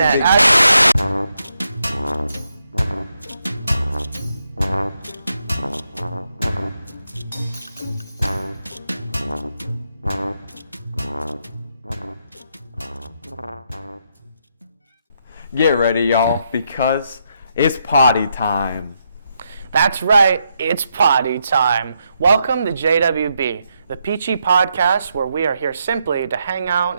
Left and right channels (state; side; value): inverted; both; correlation -0.80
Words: Get ready, y'all, because it's potty time. That's right, it's potty time. Welcome to JWB, the peachy podcast where we are here simply to hang